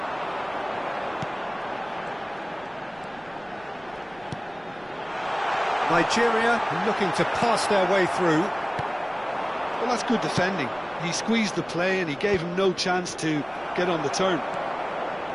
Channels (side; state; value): right; noise; rumble, 26 dB below the sound